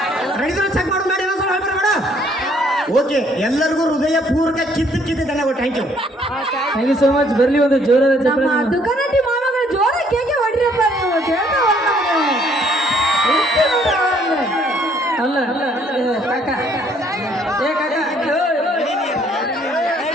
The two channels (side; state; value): both; normal; correlation 0.64